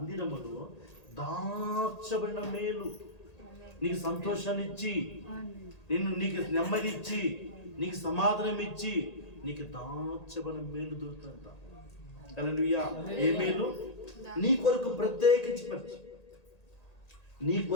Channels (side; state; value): right; late; 1.8 ms